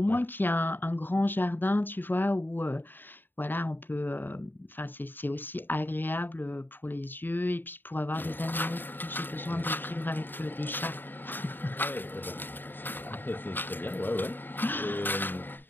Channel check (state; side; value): late; right; 0.093 ms